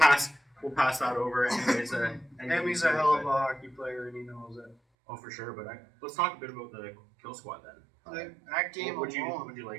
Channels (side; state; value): left; drops out; at 4.8 s